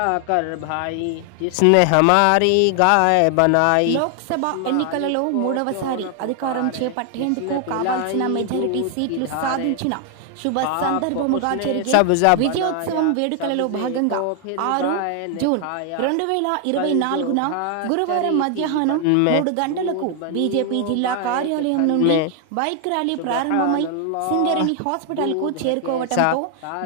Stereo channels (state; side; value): different; both; correlation 0.00